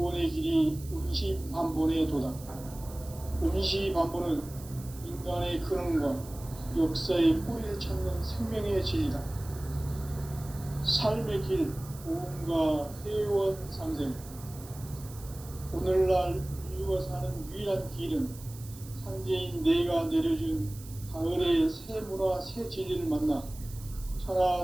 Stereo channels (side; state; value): right; noise; hiss, 18 dB below the sound